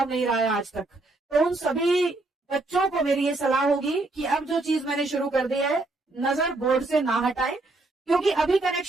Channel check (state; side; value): quieter; left; 3.0 dB